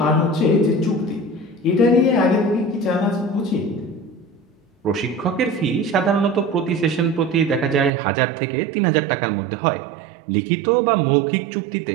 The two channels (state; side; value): drops out; left; at 7.9 s